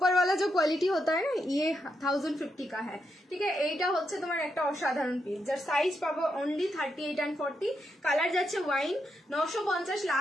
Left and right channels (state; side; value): normal; both; correlation 0.83